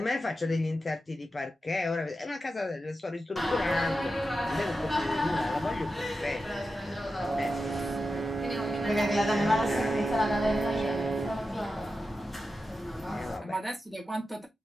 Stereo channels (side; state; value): both; normal; correlation 0.91